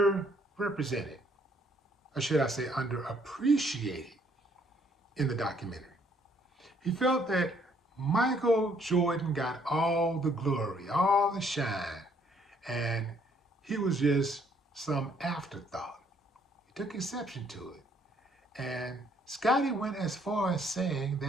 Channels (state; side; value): normal; both; correlation 0.66